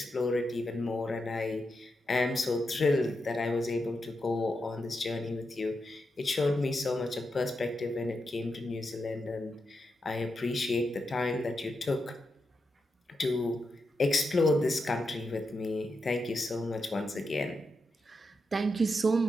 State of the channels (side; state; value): both; normal; correlation 0.86